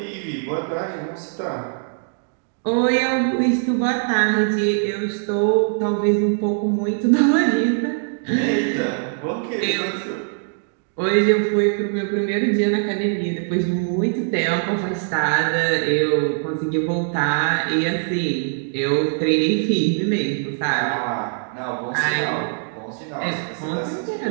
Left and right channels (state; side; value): silent; left; digital silence